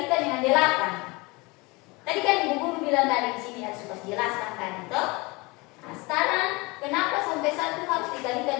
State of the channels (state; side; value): quieter; right; 25.1 dB